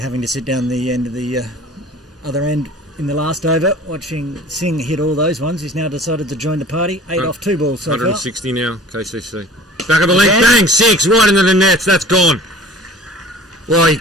to sit down the end of the other end in the last over, watching Singh hit all those ones. He's now decided to join the party. 8 off 2 balls so far. 160 now, KCC. Back of the length, Again. bang, 6, right into the nets, that's gone. Well, he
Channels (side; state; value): both; normal; correlation 0.45